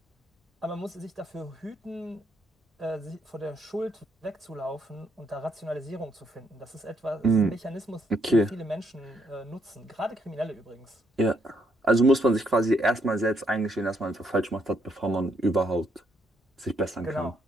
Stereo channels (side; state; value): both; normal; correlation 0.73